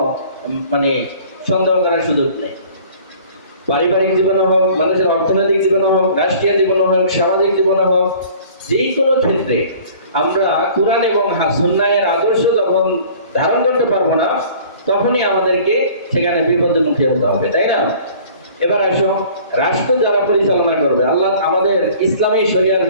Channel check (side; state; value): both; inverted; correlation -0.50